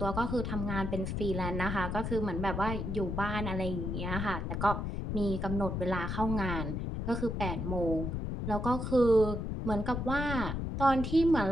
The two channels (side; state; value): left; noise; rumble, 3 dB below the sound